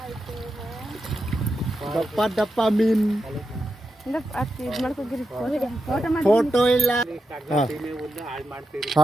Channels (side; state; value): both; normal; correlation 0.87